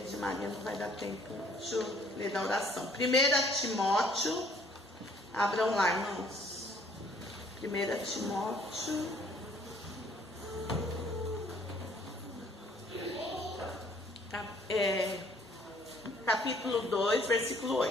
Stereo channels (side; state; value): both; normal; correlation 0.60